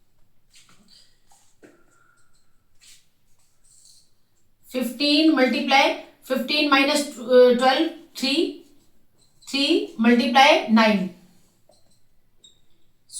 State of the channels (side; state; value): both; identical; correlation 1.00